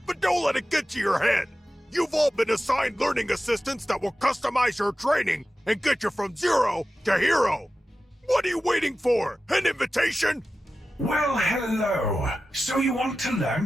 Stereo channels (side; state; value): both; normal; correlation 0.94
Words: but don't let it get to your head. You've all been assigned learning assistants that will customize your training and get you from zero to hero. What are you waiting for? An invitation? Well, hello. So you want to learn